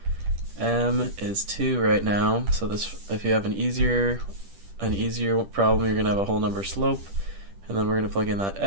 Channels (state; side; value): late; left; 10 ms